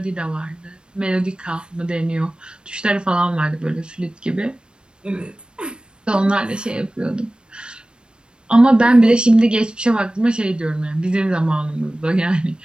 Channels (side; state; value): left; late; 0.053 ms